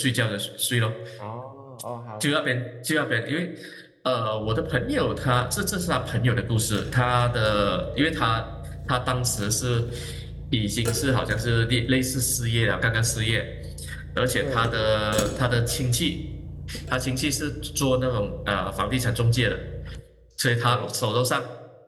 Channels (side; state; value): both; identical; correlation 1.00